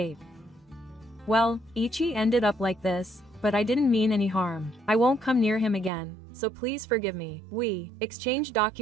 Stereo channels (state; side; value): drops out; left; at 5.9 s